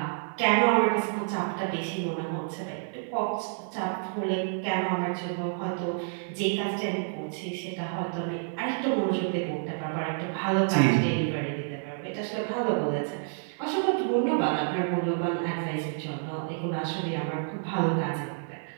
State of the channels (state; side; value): silent; left; 59 dB below the other